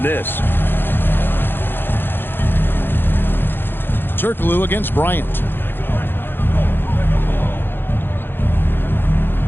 this. Turkoglu against Bryant.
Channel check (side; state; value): right; late; 0.10 ms